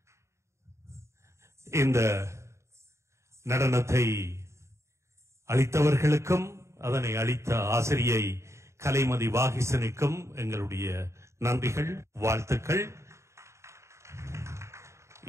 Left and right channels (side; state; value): left; late; 0.14 ms